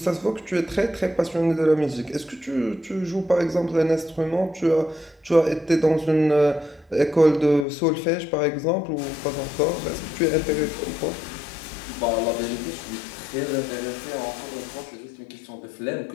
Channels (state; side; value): drops out; right; at 7.7 s